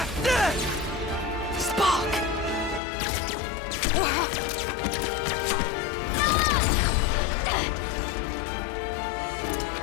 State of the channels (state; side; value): drops out; right; at 2.8 s